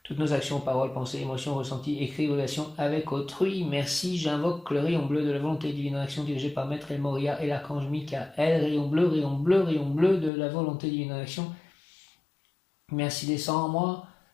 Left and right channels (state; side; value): drops out; right; at 10.3 s